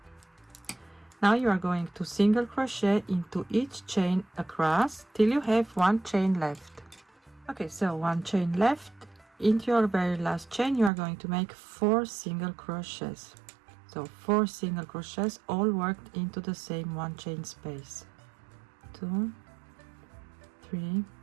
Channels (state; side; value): drops out; left; at 10.9 s